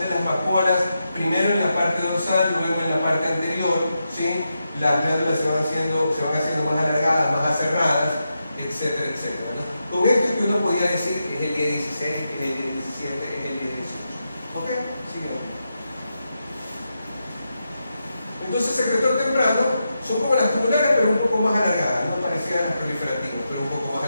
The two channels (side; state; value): both; inverted; correlation -0.87